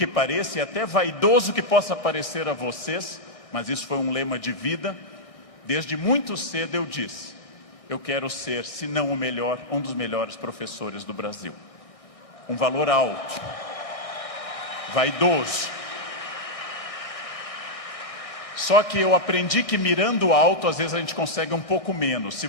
pareça, e até vaidoso que possa parecer a vocês, mas isso foi um lema de vida. Desde muito cedo eu disse: eu quero ser, se não o melhor, um dos melhores professores do Brasil. Um valor alto, vaidoso. Só que eu aprendi que mirando alto, às vezes a gente consegue um pouco menos. Se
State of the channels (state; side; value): late; right; 1.6 ms